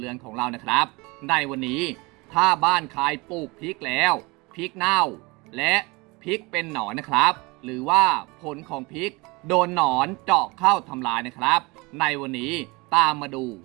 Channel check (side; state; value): left; quieter; 25.2 dB